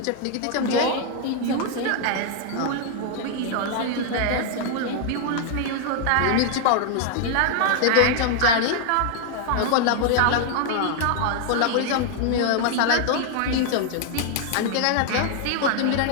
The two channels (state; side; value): different; both; correlation 0.00